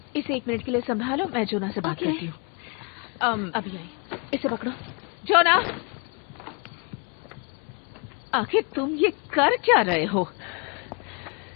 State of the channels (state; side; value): quieter; right; 34.0 dB